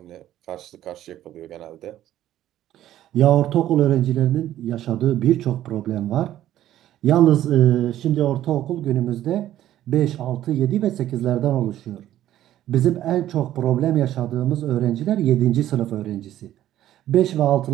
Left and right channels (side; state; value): left; quieter; 12.8 dB